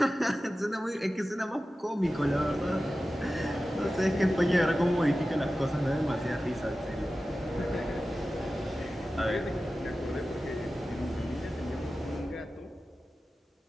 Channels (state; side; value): normal; both; correlation 0.95